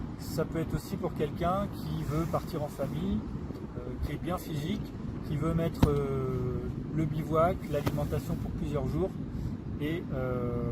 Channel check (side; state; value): both; identical; correlation 1.00